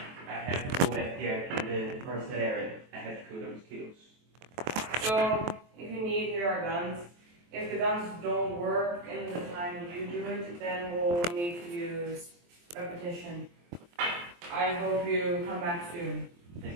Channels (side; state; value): left; late; 23 ms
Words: I have to go back there to the first area. I have to kill the mosquitoes. So, if you need, here are guns. If the guns don't work in the time you do it, then we'll need to use repetition. I hope you come back soon.